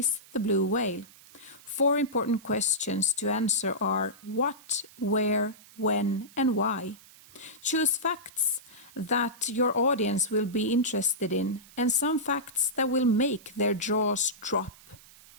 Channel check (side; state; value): right; noise; hiss, 23 dB below the sound